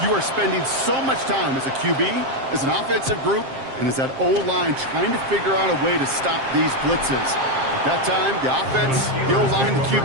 you are spending so much time as a QB, as an offensive group, and as that O-line trying to figure out a way to stop these blitzes. At that time, the offense, the O-line, the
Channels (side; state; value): left; late; 7.5 ms